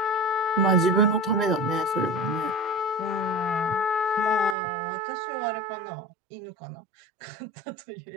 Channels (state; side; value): drops out; left; at 4.5 s